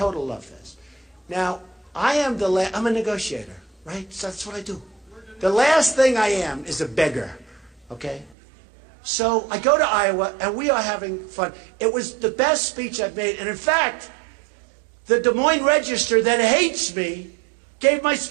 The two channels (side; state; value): left; drops out; at 8.3 s